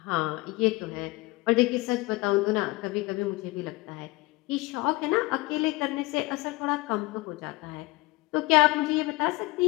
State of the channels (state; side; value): quieter; right; 22.1 dB